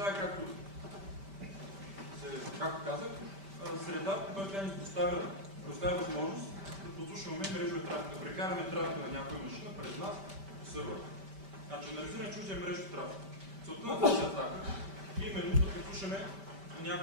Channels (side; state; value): left; late; 5.1 ms